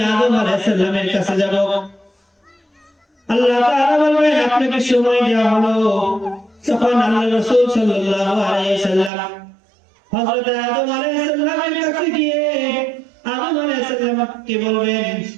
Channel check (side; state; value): left; drops out; at 9.1 s